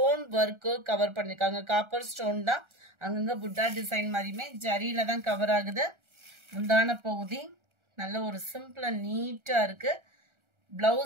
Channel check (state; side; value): late; left; 1.4 ms